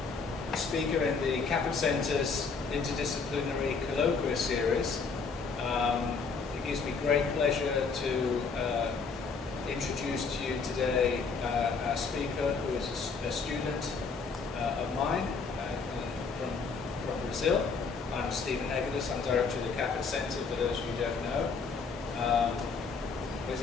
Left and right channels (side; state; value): right; quieter; 4.9 dB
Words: speaker in the Kaput Centre's interdisciplinary colloquium series. It gives me great pleasure to introduce to you today our speaker, who is a student of mine from Brazil. I'm Stephen Egelis. I'm director of the Kaput Centre, for those of you who don't know. Where's